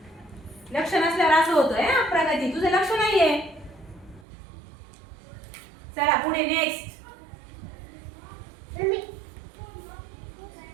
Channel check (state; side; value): drops out; left; at 4.2 s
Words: लक्ष नसल्यावर असं होतंय. प्रगती तुझं लक्ष नाहीये. चला पुढे नेक्स्ट.